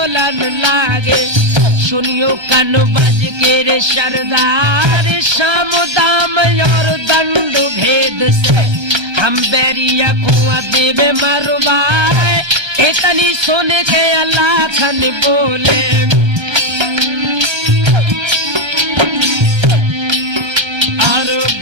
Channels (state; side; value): late; left; 1.3 ms